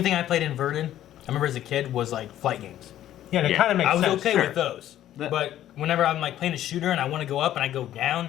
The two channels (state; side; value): quieter; right; 12.3 dB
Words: thing I played inverted, I remember as a kid, was like flight games. Yeah, and it Yeah. kind of makes I was sense. okay sure. with those. That- But whenever I'm like playing a shooter and I want to go up and I go down,